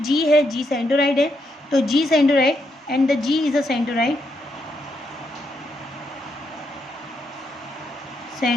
g है, g सेंट्रोइड है, तो g centroid and the g is a centroid,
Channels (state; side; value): normal; both; correlation 0.79